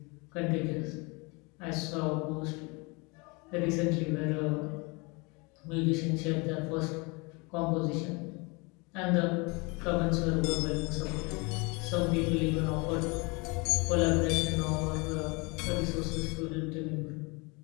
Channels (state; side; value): quieter; right; 28.4 dB